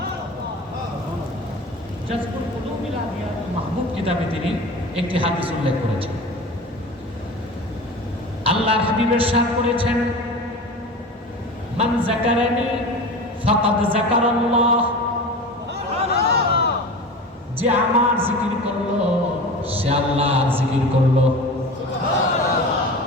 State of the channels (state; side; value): normal; both; correlation 0.33